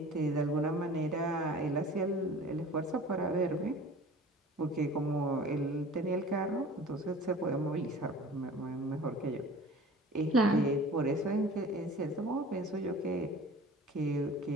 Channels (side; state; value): both; normal; correlation 0.43